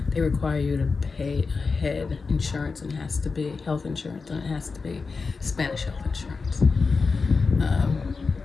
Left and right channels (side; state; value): right; quieter; 4.5 dB